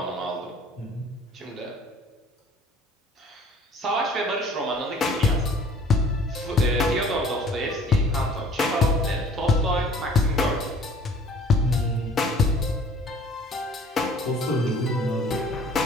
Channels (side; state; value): both; normal; correlation 0.51